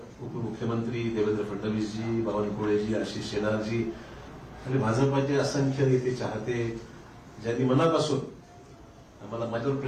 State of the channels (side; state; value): both; identical; correlation 1.00